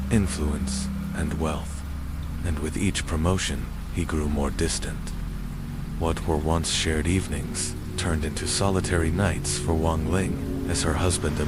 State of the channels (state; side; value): identical; both; correlation 1.00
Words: influence, and wealth. And with each promotion, he grew more distant. What were once shared evenings turned into solitary nights for Wang Ling as her husband